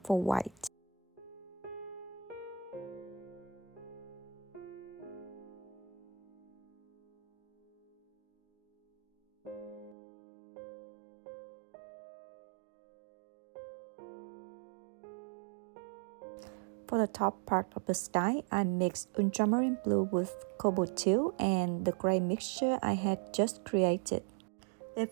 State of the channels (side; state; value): left; drops out; at 10.0 s